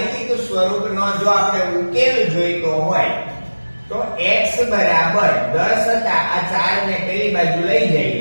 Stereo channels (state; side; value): inverted; both; correlation -1.00